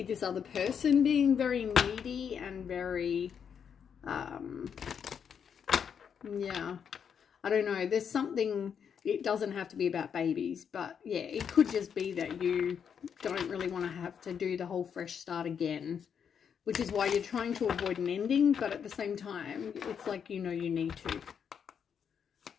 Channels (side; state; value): right; quieter; 7.5 dB